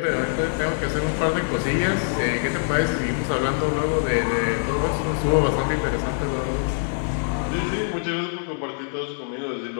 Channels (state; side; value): silent; right; digital silence